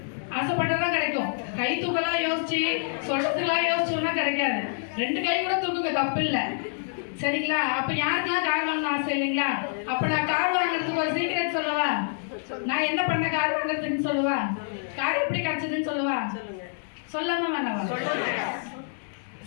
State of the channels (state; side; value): silent; right; digital silence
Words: ஆசைப்பட்டதான் கிடைக்கும். கை தூக்கலாம் யோசிச்சு சொல்றதுக்கெல்லாம் யோசிச்சோம்னா கிடைக்காது. 2 கை கூட தூக்குங்க, தப்பு இல்லை சரிங்களா. அப்ப யாருக்கெல்லாம் கார் வாங்கணும் ஆசை இல்லைங்களா. அப்ப நான் கார் வாங்குறதுக்கு ஒரு சீக்ரெட் சொல்லவா, நான் என்ன பண்ண கார் வாங்குறதுன்னு சொல்லவா, கார் எப்படி கிடைச்சதுன்னு சொல்லவா, சொல்லாம வேணாவா,